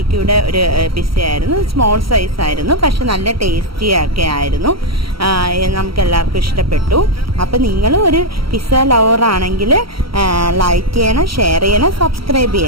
ഒരു പിസ്സയായിരുന്നു. സ്മോൾ സൈസ് ആയിരുന്നു, പക്ഷെ നല്ല ടേസ്റ്റി ഒക്കെ ആയിരുന്നു. നമുക്ക് എല്ലാവർക്കും ഇഷ്ടപ്പെട്ടു. അപ്പോൾ നിങ്ങൾ ഒരു പിസ്സ ലവർ ആണെങ്കിൽ ലൈക്ക് ചെയ്യണം, ഷെയർ ചെയ്യണം, സബ്സ്ക്രൈബ്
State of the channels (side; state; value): left; late; 0.75 ms